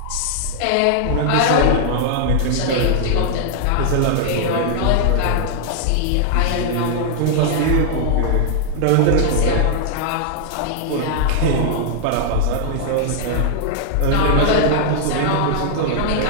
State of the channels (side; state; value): both; different; correlation -0.01